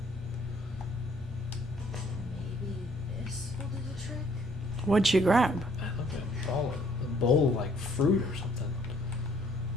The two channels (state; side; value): normal; both; correlation 0.63